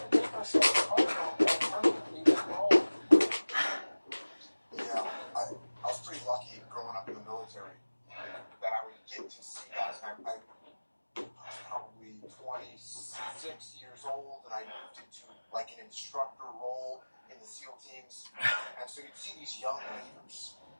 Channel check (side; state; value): both; inverted; correlation -1.00